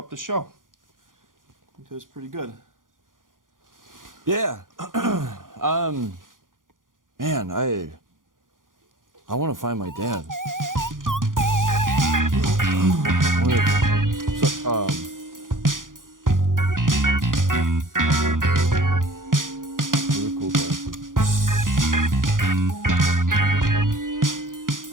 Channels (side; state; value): left; late; 0.89 ms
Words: the show. I think it was pretty good. Yeah. Man, I want to find my dad. Really cool glasses.